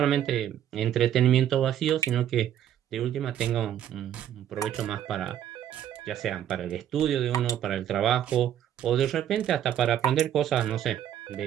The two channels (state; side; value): quieter; left; 10.5 dB